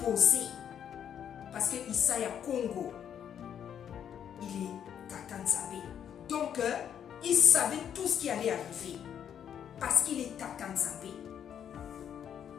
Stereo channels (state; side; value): quieter; right; 9.0 dB